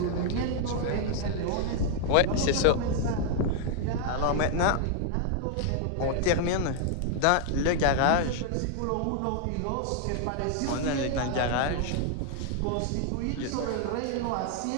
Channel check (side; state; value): both; different; correlation 0.00